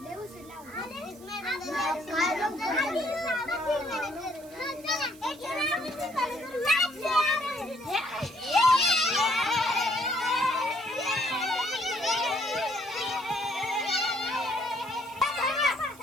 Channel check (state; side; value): noise; right; hiss, 22 dB below the sound